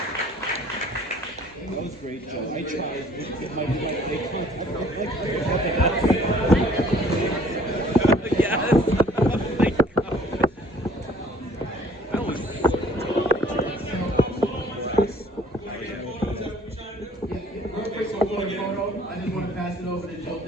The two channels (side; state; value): both; normal; correlation 0.56